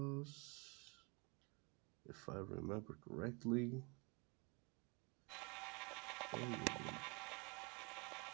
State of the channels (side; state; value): left; quieter; 30.7 dB